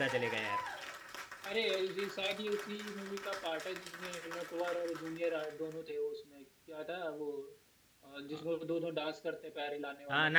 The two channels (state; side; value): identical; both; correlation 1.00